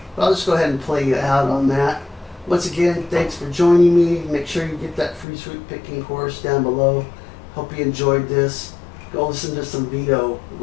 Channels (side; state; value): right; drops out; at 5.2 s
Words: But I'll just go ahead and play you out on that. Once again, thanks for joining me. Make sure you get that free sweet picking course down below. Hope you enjoyed this. Go listen to some Vito.